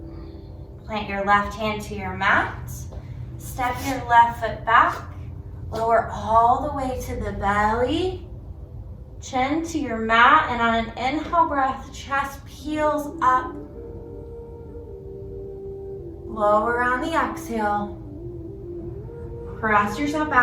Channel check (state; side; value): identical; both; correlation 1.00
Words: Plant your left hand to your mat. Step your left foot back. Lower all the way to the belly. Chin to your mat, and on an inhale breath, chest peels up. Lower on the exhale. Press yourself